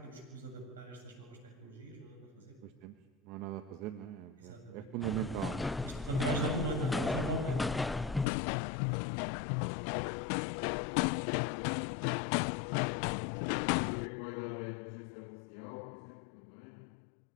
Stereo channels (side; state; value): right; drops out; at 8.2 s